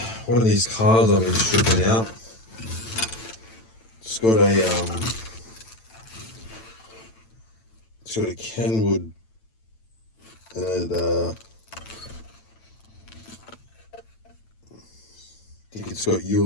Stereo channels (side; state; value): right; late; 9.0 ms